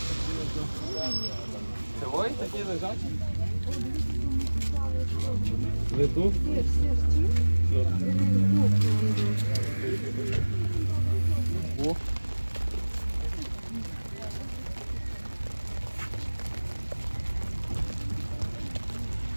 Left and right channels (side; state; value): both; inverted; correlation -1.00